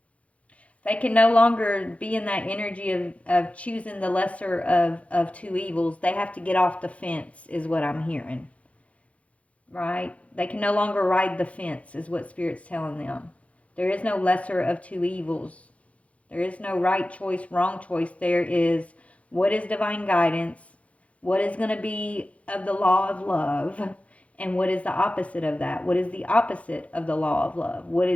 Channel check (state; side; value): late; right; 0.064 ms